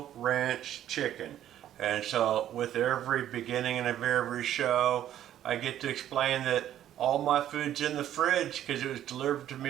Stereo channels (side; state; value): left; quieter; 11.6 dB